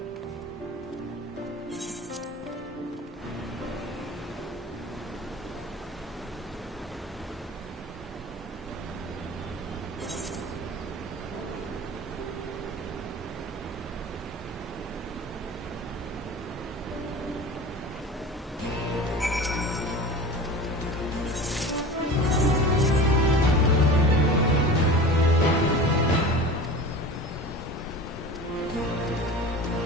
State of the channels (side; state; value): both; normal; correlation 0.36